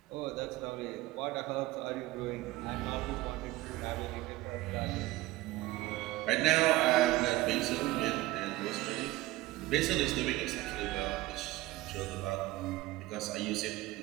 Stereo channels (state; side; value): quieter; left; 18.1 dB